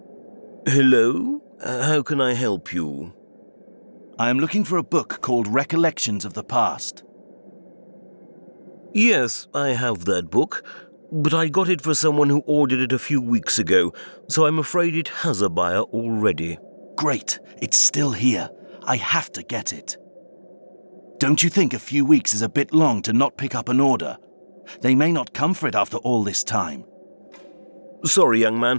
Hello? How can I help you? I am looking for a book called Recollections of the Past. Yes, I have that book, but I got it for someone who ordered it a few weeks ago, so I'm afraid it has a buyer already. Great, it's still here. I have to get it. Don't you think a few weeks is a bit long to not pick up an order? They may not come for it after all this time. Sorry, young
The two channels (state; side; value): inverted; both; correlation -1.00